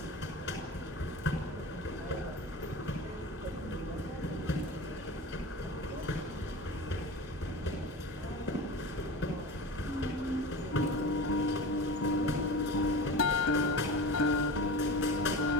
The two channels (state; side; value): normal; both; correlation 0.31